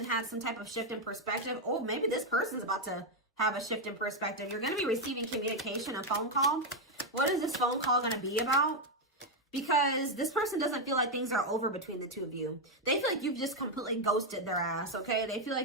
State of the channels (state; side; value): normal; both; correlation 0.03